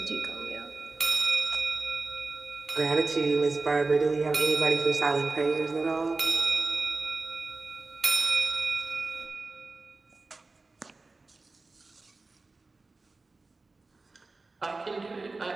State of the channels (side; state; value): left; quieter; 3.6 dB